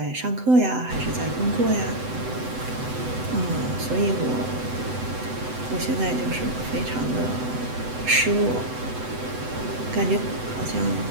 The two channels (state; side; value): late; left; 7.9 ms